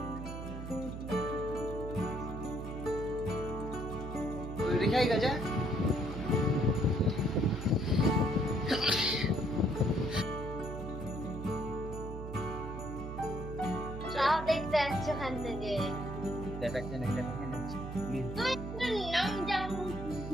রেখাই গাজা চাও দেখতে আসছো ওখান থেকে।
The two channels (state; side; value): noise; right; hum, 8 dB below the sound